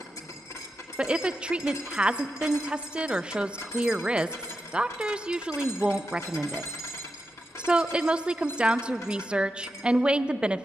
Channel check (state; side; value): normal; both; correlation 0.88